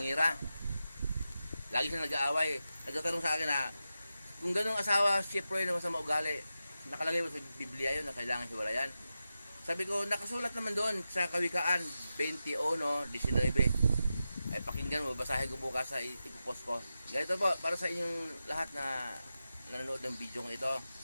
Lagi siya nag-aaway. Nagtatanong sa akin na, kung ganun asawa, Chef Roy na masama ugali, nakalagay mo sa Biblia yun na kailangan hiwalayan. Sabi ko, nakasulat naman doon sa Kawikaan 21:19. Ay pakinggan mo, basahin ko bukas sa ipopost ko. Ganito po, para sa inyong lahat na nanonood ng video ko ito.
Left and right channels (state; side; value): inverted; both; correlation -0.91